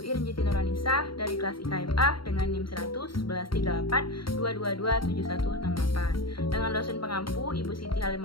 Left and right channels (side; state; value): right; late; 0.74 ms